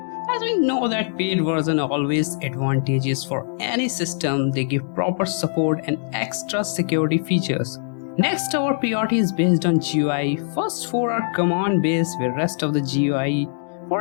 As we know that paid version always advantageous for any system, they give proper support and extra security features. Next, our priority is based on GUI. First 4 are command based with rest of the GUI. For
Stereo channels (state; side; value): silent; right; 64 dB below the other